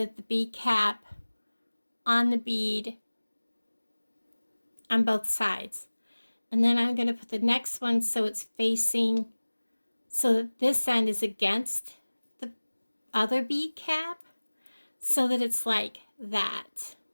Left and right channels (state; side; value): inverted; both; correlation -1.00